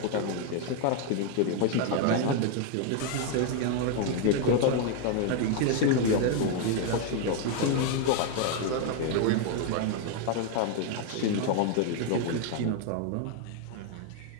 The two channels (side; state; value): both; different; correlation 0.01